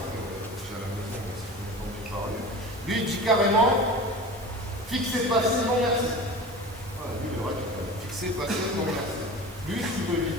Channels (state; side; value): normal; both; correlation 0.34